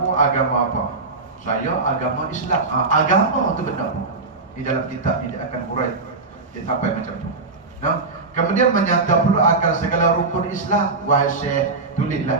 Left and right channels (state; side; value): quieter; left; 3.8 dB